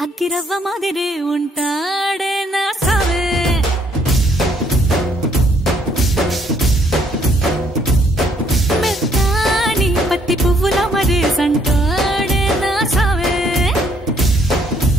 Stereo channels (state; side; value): normal; both; correlation 0.67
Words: అగ్గిరవ్వ మాదిరే ఉంటాడే నా సావే మెత్తాని పత్తి పువ్వుల మరేసంటాడే నా సావే